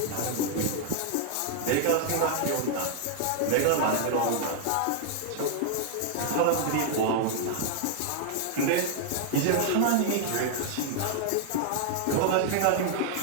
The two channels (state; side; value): different; both; correlation -0.01